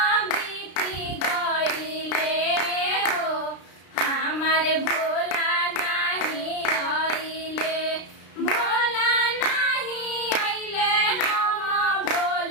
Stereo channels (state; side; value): late; right; 33 ms